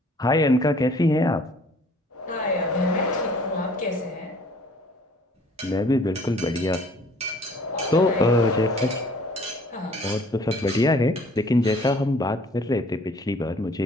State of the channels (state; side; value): normal; both; correlation 0.55